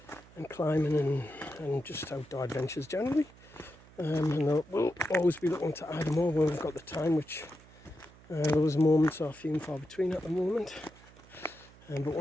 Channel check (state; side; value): noise; right; hum, 23 dB below the sound